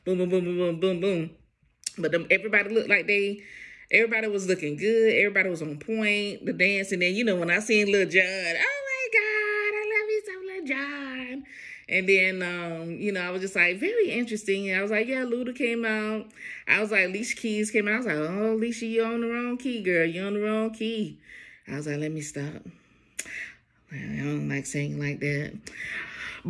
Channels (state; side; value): identical; both; correlation 1.00